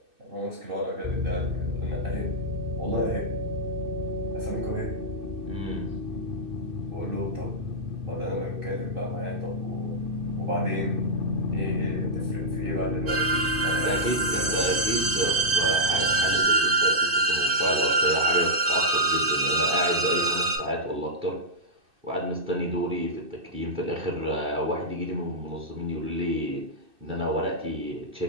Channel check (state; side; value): late; left; 2.6 ms